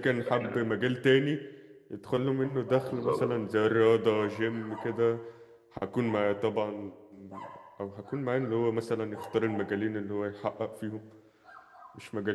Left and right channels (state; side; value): identical; both; correlation 1.00